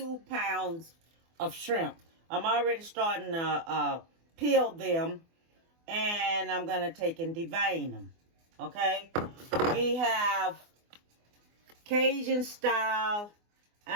pounds of shrimp. I'm already starting to peel them, and I'm going to take and devein them. Okay, we have Cajun style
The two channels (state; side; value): late; left; 24 ms